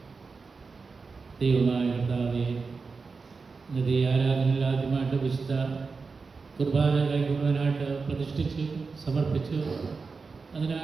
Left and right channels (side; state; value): left; quieter; 4.6 dB